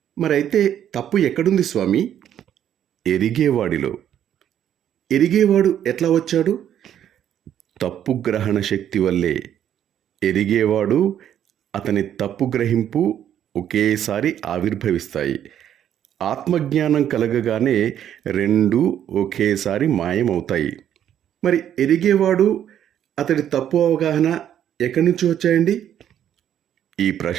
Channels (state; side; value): quieter; left; 10.2 dB